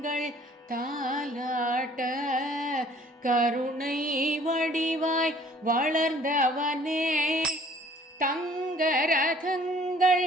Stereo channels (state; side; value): normal; both; correlation 0.55